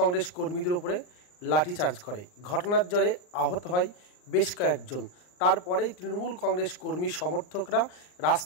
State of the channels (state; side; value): late; right; 39 ms